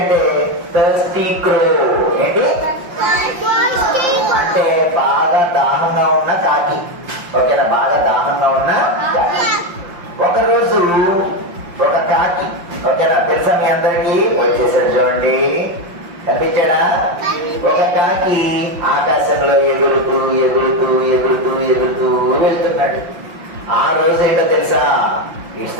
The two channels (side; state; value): left; late; 5.8 ms